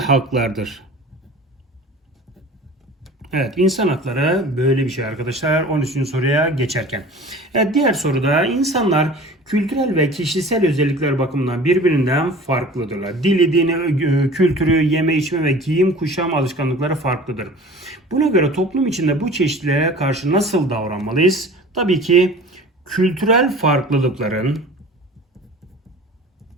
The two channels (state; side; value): normal; both; correlation 0.42